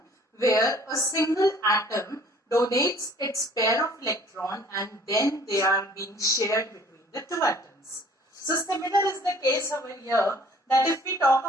where a single atom donates its pair of electron and then they are being shared between the two atoms. So similar is the case over here, that if we talk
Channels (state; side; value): normal; both; correlation 0.54